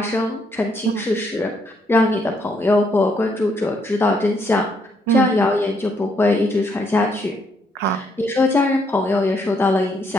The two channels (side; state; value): both; normal; correlation 0.73